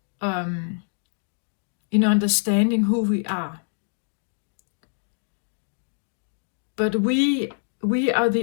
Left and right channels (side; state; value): right; silent; digital silence